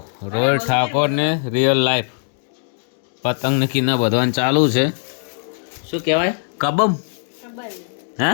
રોહિત ઠાકોરને રિયલ લાઈફ પતંગ કિના બધવાનું ચાલુ છે. શું કહેવાય? કબમ હે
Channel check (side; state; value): right; silent; digital silence